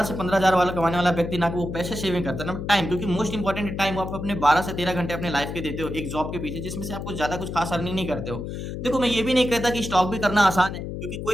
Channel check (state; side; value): noise; left; hum, 6 dB below the sound